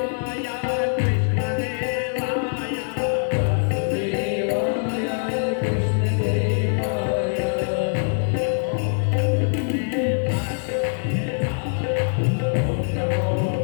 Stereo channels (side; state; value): right; silent; digital silence